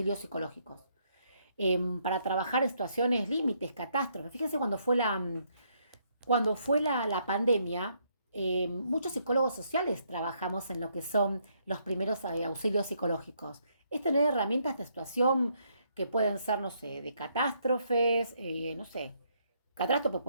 psicológicos. Para trabajar en situaciones límites, catástrofes. Fíjense cuando fue la pandemia, muchos psicólogos sociales trabajamos en lo que son los primeros auxilios psicológicos. Es tener herramientas de situación que pueden ser, no sé, de catástrofes, no sé, catástrofe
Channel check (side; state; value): both; inverted; correlation -0.72